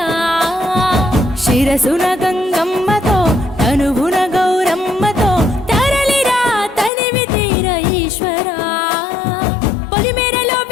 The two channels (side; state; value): right; drops out; at 6.9 s